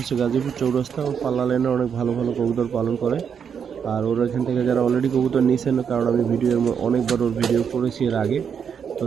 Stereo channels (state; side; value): quieter; left; 7.3 dB